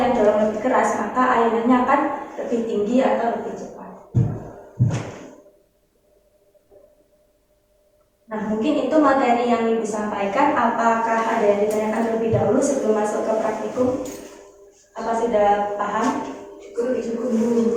dorong lebih keras, maka ayunannya akan lebih tinggi atau lebih cepat. Nah, mungkin itu materi yang Ibu sampaikan. Apakah ada yang ditanyakan terlebih dahulu sebelum masuk ke praktikum? Apa sudah paham?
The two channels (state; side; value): identical; both; correlation 1.00